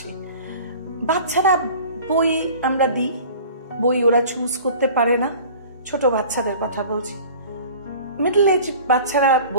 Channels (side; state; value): both; inverted; correlation -0.43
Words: বাচ্চারা বই আমরা দিই, বই ওরা চুজ করতে পারে না। ছোট বাচ্চাদের কথা বলছি। মিডল এজ বাচ্চারা